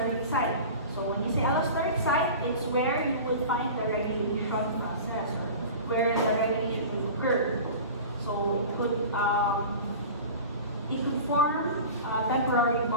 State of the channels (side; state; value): both; inverted; correlation -0.36